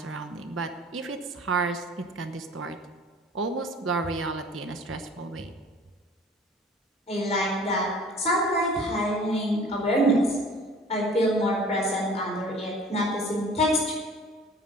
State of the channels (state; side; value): normal; both; correlation 0.47